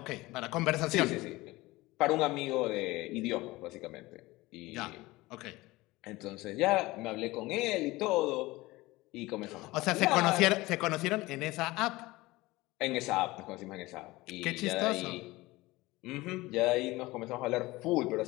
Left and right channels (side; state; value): right; quieter; 20.1 dB